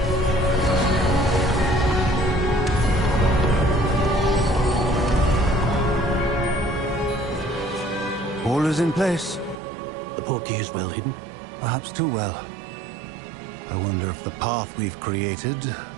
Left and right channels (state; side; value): drops out; left; at 9.6 s